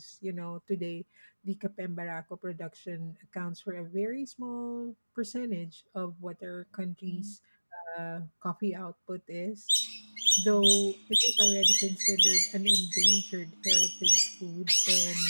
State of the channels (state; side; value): inverted; both; correlation -1.00